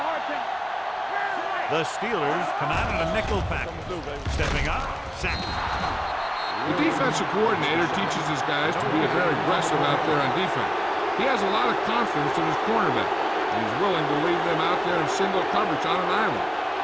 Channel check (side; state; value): both; identical; correlation 1.00